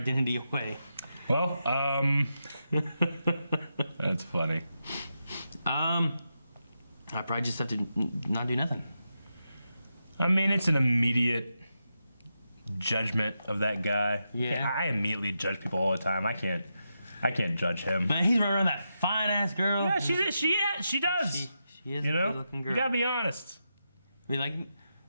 away? Well, that's funny. I probably just have to not do nothing. I mean, it's an immediate judgment of that guy. Yeah. I immediately judge people all the time. I can't judge him. But he's running around that fine ass girl. Yeah, she does. She is you a good looking girl. You gotta be honest. Be like,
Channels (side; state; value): both; inverted; correlation -0.87